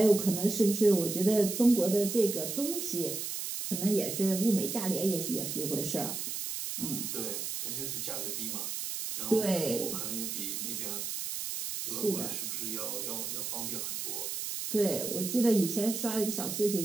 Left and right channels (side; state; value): right; noise; hiss, 4 dB below the sound